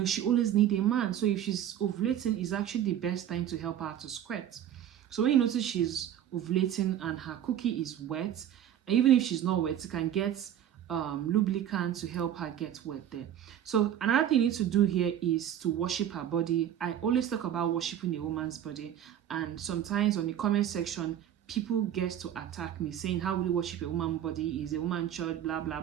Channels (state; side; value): quieter; left; 10.5 dB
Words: always needs a man. So if she's ovulating, it's actually the best time to help her to squirt. So when you notice she's ovulating and her cookie is wet, even if she's not wet, you can get lubricant to help her get wet there. So another thing you need to do here is to worship her body. I always talk about worshiping a woman's body, and sometimes on the comment section people get to attack me saying, how will you worship a woman's body? Is a woman church, blah blah